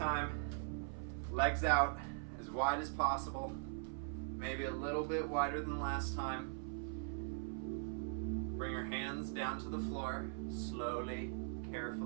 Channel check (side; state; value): left; silent; 50 dB below the other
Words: Legs out as wide as possible. Maybe a little bit wider than last time. Bring your hands down to the floor, slowly,